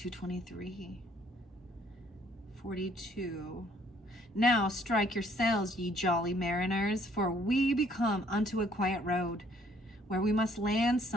42. Now strike your sails, ye jolly mariners, for we be come unto a quiet road, where we must land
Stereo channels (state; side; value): normal; both; correlation 0.63